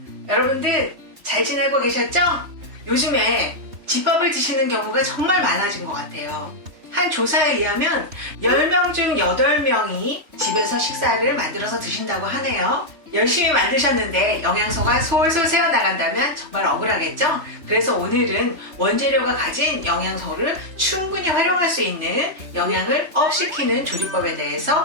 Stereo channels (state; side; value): late; left; 3.2 ms